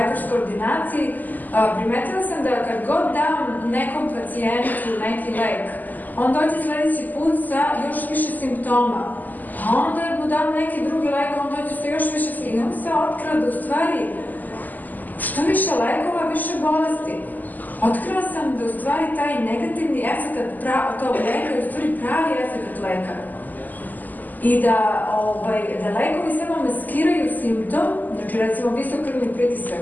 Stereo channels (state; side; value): late; right; 0.084 ms